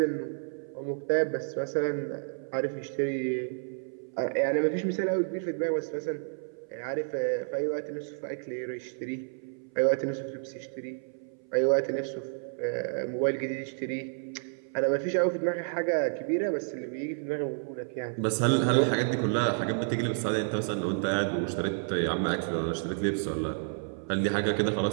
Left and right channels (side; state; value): left; silent; 58 dB below the other